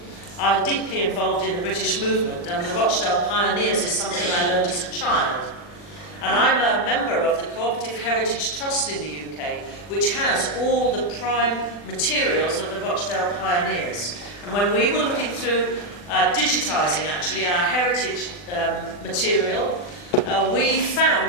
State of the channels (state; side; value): late; right; 40 ms